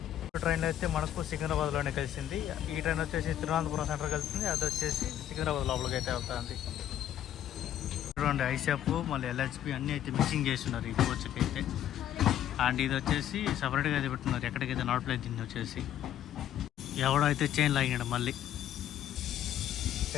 ట్రైన్ అయితే మనకు సికింద్రాబాద్లోనే కలిసింది. ఈ ట్రైన్ వచ్చేసి తిరువనంతపురం సెంటర్ కలుస్తుంది. అది వచ్చేసి సికింద్రాబాద్ లోపలికి అయితే వెళ్తుంది. చూడండి, ఐషాప్ మళ్ళీ LHP అన్నీ అయితే మిక్సింగ్ చేస్తున్నారు ఈ కోచ్కి అయితే. అండ్ ఇది వచ్చేసి సపరేట్గా అయితే పెట్టున్నారు. ఎక్కడికైతే నాట్ ప్లేస్ దీన్ని వచ్చేసి ఎవడో అయితే చైన్ లాగాడు. మళ్ళీ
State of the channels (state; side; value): quieter; right; 11.3 dB